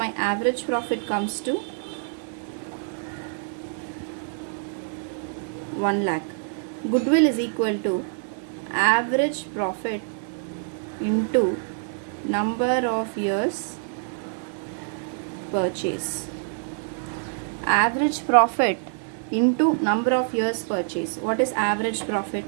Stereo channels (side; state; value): left; silent; digital silence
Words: average profit comes to 1 lakh. Goodwill is equal to average profit into number of years purchase. Average profit into number of years purchase. What is average profit?